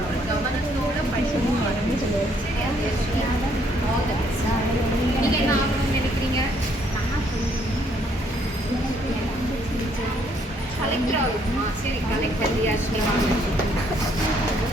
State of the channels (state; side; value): normal; both; correlation 0.68